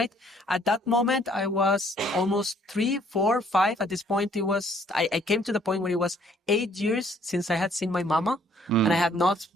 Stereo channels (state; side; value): normal; both; correlation 0.63